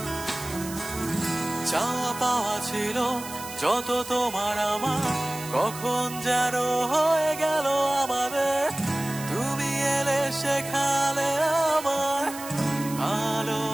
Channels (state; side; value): noise; right; hiss, 12 dB below the sound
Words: চাওয়া পাওয়া ছিল যত তোমার আমার, কখন যেন হয়ে গেল আমাদের। তুমি এলে শেখালে আমার